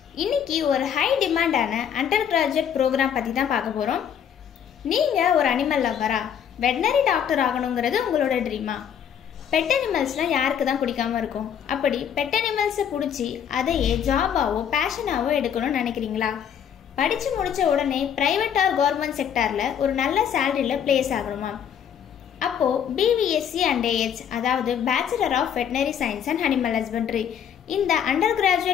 இன்னைக்கு ஒரு high டிமாண்டான under graduate program பத்தி தான் பார்க்க போறோம். நீங்க ஒரு அனிமல் லவ்வரா? வெட்டனரி டாக்டர் ஆகணும்ங்கிறது உங்களோட ட்ரீமா? பெட் அனிமல்ஸ்லாம் யாருக்கு தான் பிடிக்காம இருக்கும்? அப்படி பெட் அனிமல்ஸை பிடிச்சி அதையே ஜாபாவோ பேஷனாவோ எடுக்கணும்னு நினைக்கிறீங்களா? படிச்சு முடிச்ச உடனே பிரைவேட் ஆர் கவர்மெண்ட் செக்டார்ல ஒரு நல்ல சேலரியில பிளேஸ் ஆகணுமா? அப்போ BVSc and AH அதாவது bachelor of veterinary science and animal husbandry இந்த அண்டர்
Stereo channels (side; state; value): right; quieter; 8.6 dB